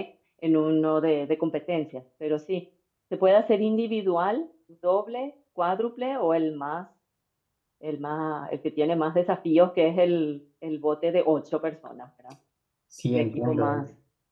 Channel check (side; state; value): both; identical; correlation 1.00